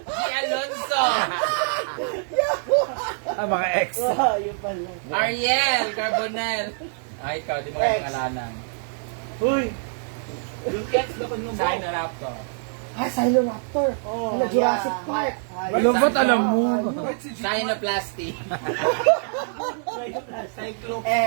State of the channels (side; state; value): left; silent; 62 dB below the other